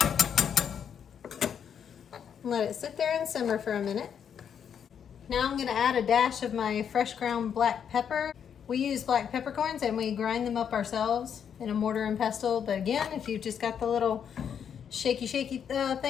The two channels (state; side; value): quieter; right; 8.0 dB